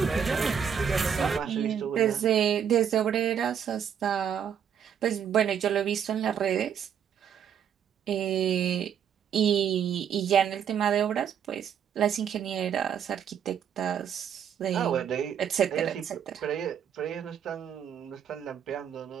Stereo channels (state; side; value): quieter; left; 8.2 dB